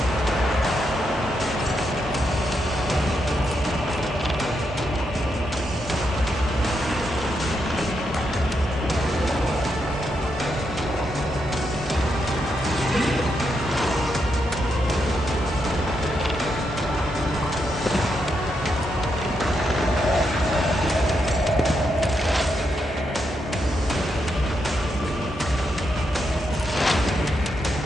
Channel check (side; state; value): both; normal; correlation 0.81